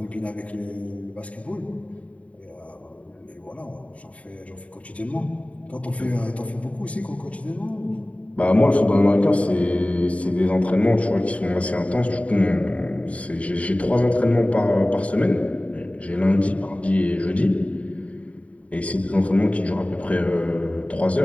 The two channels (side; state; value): right; late; 0.066 ms